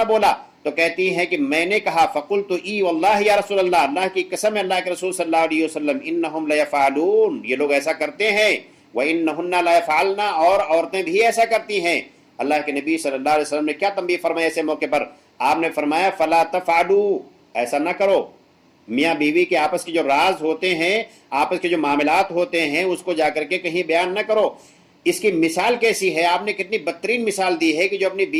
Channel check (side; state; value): both; identical; correlation 1.00